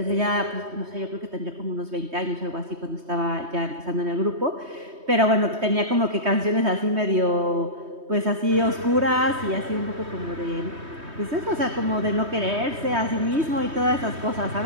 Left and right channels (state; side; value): late; left; 3.2 ms